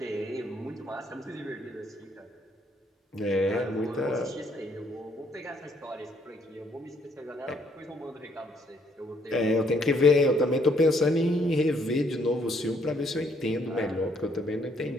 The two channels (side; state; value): both; normal; correlation 0.68